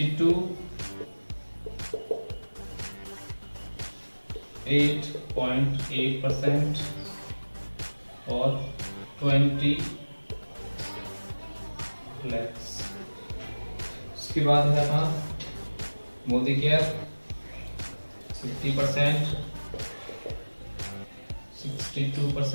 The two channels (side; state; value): both; inverted; correlation -1.00